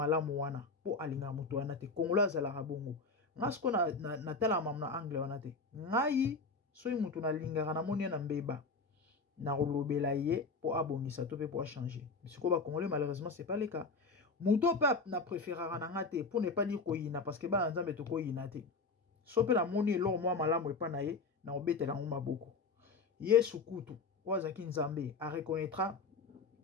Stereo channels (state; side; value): quieter; right; 4.1 dB